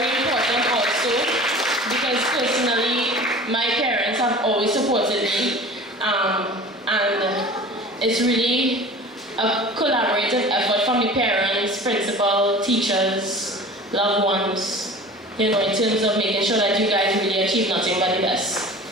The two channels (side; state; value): both; normal; correlation 0.40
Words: important also, because personally, my parents have always supported me, and it's really a collaborative effort from the parents, principal, teachers, loved ones, you know, in terms of making sure that you guys really achieve nothing but the best.